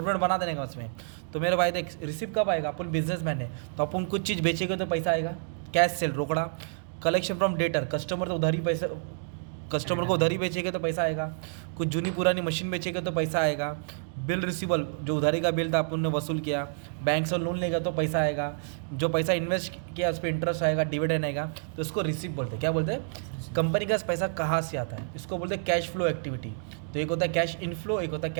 बना देने का उसमें। तो मेरे भाई देख, रिसिप्ट कब आएगा? अपन बिजनेसमैन है तो अपन कुछ चीज़ बेचेंगे तो पैसा आएगा, कैश सेल रोकड़ा। कलेक्शन फ्रॉम डेटर, कस्टमर तो उधारी पैसे, कस्टमर को उधारी बेचेंगे तो पैसा आएगा। कुछ जूनी पुरानी मशीन बेचेंगे तो पैसा आएगा। बिल रिसीवल, जो उधारी का बिल था अपन ने वसूल किया। बैंक से लोन लेगा तो पैसा आएगा। जो पैसा इन्वेस्ट किया उस पर इंटरेस्ट आएगा, डिविडेंड आएगा। तो इसको रिसिप्ट बोलते हैं। क्या बोलते हैं? कंपनी का पैसा कहाँ से आता है, इसको बोलते हैं कैश फ्लो एक्टिविटी। तो एक होता है कैश इनफ्लो, एक होता है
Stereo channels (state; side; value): silent; left; digital silence